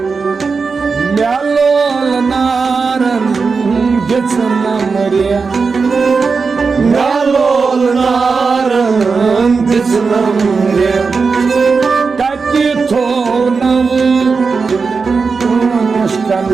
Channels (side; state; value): left; quieter; 4.8 dB